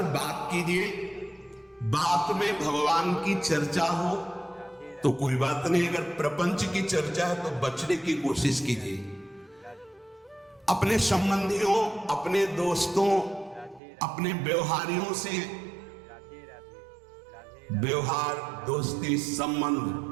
बात कीजिए। बात में भगवान की चर्चा हो तो कोई बात नहीं। अगर प्रपंच की चर्चा है तो बचने की कोशिश कीजिए। अपने संबंधियों, अपने दोस्तों, अपने व्यवहारियों से व्यवहार, दोस्ती,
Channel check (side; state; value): left; drops out; at 13.8 s